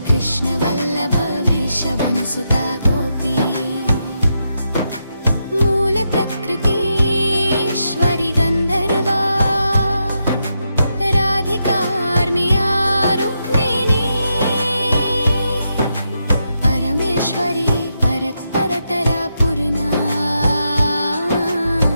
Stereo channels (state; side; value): inverted; both; correlation -0.83